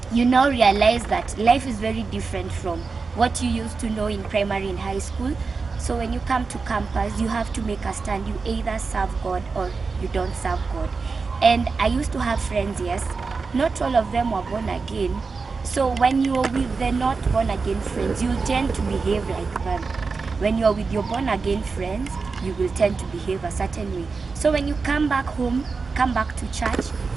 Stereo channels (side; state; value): left; quieter; 4.5 dB